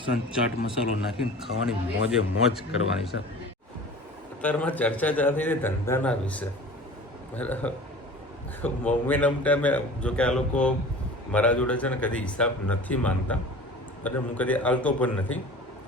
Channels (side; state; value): both; normal; correlation 0.40